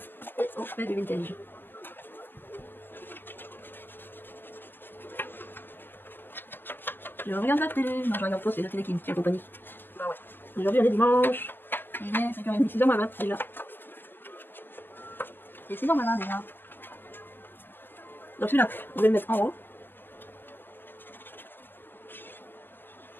Et on fait du vintage. Je regarde la télé. Non, je regarde pas, c'est la télé qui me tient compagnie. Bah ouais. Aujourd'hui, on est dimanche. Il est 5h30, 6h20 déjà. Et 6h20 déjà. Donc celui-là, on va le mettre en haut.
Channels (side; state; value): right; late; 0.093 ms